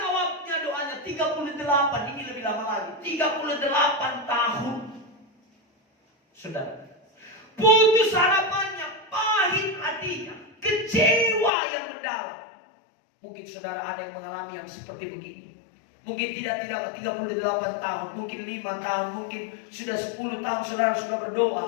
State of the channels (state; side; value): drops out; right; at 11.5 s